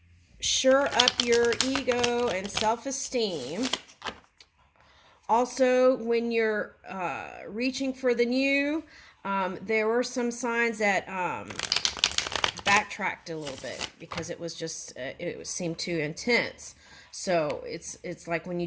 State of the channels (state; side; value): identical; both; correlation 1.00